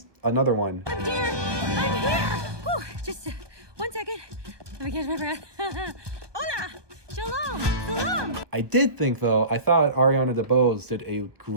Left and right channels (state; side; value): late; left; 1.2 ms